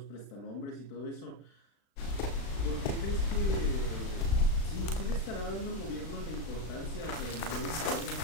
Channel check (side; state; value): right; late; 36 ms